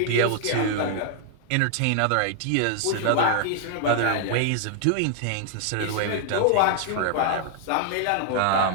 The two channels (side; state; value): both; different; correlation -0.01